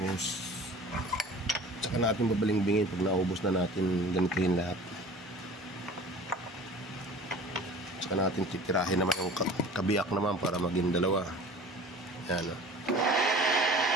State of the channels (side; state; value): both; normal; correlation 0.43